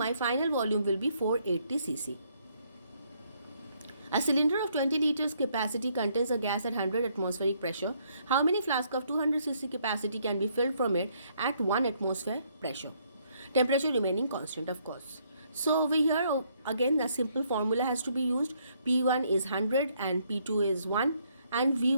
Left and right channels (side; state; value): both; inverted; correlation -0.70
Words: final volume will be 480 cc. A cylinder of 20 liters capacity contains a gas at 100 atmospheric pressure. How many flasks of 200 cc capacity can be filled from it at 1 atmosphere pressure? Temperature remaining constant, of course. So over here again the simple formula has to be used. P1 is 100 and P2 is 1 and